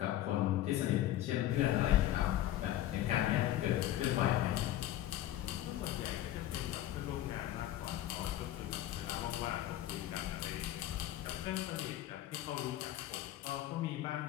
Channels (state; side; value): quieter; right; 13.5 dB